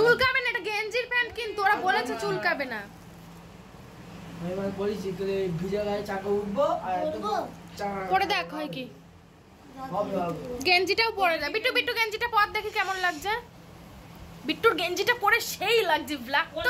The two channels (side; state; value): both; identical; correlation 1.00